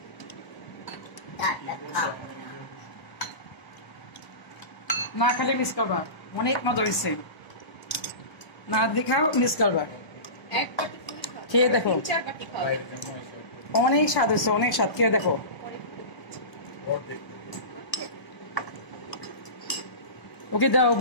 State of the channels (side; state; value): right; late; 1.0 ms